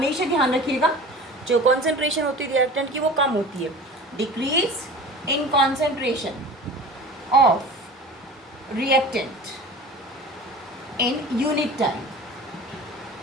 ध्यान रखिएगा जो कॉन्सेंट्रेशन होती है रिएक्टेंट की वो कम होती है। Decrease in concentration of reactant in unit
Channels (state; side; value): normal; both; correlation 0.38